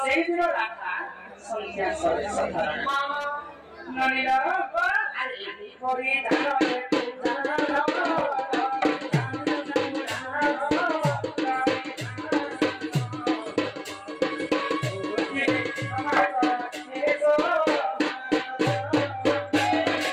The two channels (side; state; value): both; identical; correlation 1.00